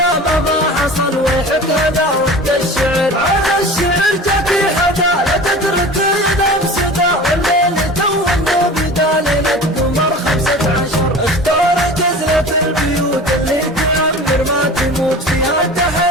ما حصل ويحك هذا وقت الشعر. على الشعر جاكي حدا لا تترك ينام سدا والليل تو بدا ليلة قمر 15. اختار جزلة البيوت اللي تعمر ما تموت فيها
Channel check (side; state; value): both; normal; correlation 0.37